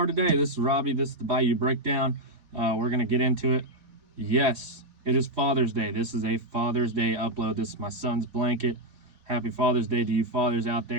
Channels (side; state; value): left; late; 4.1 ms